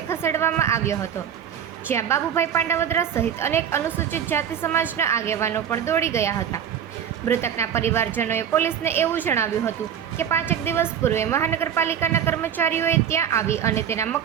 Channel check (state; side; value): quieter; left; 8.9 dB